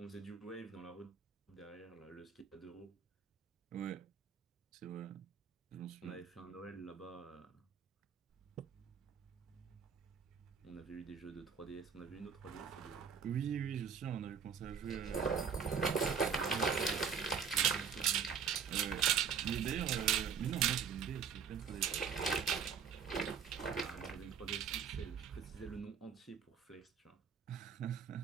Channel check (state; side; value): quieter; left; 6.9 dB